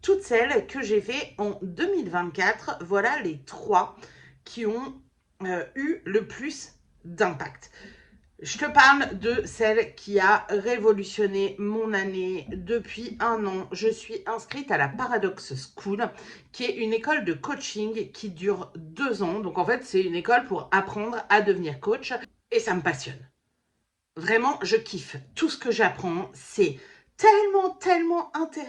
toutes celles que j'ai fait en 2024, voilà les 3 qui ont eu le plus d'impact. Je te parle de celle qui a révolutionné mon année. Depuis un an, je suis inscrite à la Paradox School, qui est une école de coaching qui dure 2 ans. Donc en fait, c'est une école pour apprendre à devenir coach et ça me passionne. Vraiment, je kiffe. Tout ce que j'apprends, c'est tellement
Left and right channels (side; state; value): both; identical; correlation 1.00